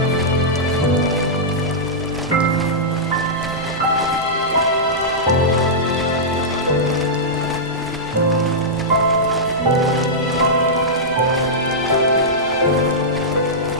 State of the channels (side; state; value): both; normal; correlation -0.11